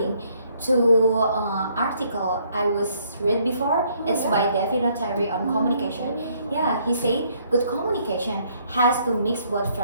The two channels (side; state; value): both; inverted; correlation -0.67